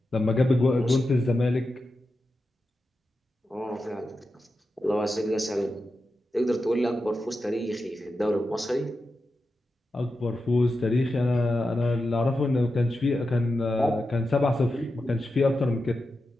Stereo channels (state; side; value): normal; both; correlation 0.90